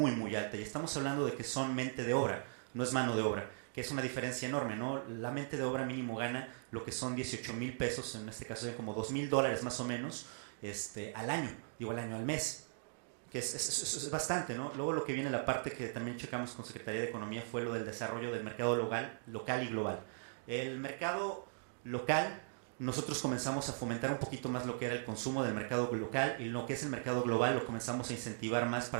muy alta. Y estamos hablando de que son mente de obra, no es mano de obra, que es una diferencia enorme, ¿no? La mente de obra mínimo gana lo que son 18,000 pesos, en este caso como $2,000 más o menos, al año, al mes. Que es bastante, ¿no? Luego lo que viene la parte que también checamos con Secretaría de Economía fue lo del desarrollo del mercado local y global. El mercado local, nosotros comenzamos a fomentar un poquito más lo que era el consumo del mercado local, y lo que es el mercado global lo comenzamos a incentivar más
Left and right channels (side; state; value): left; silent; digital silence